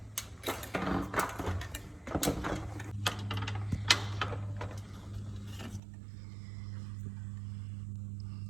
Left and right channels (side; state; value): left; drops out; at 5.8 s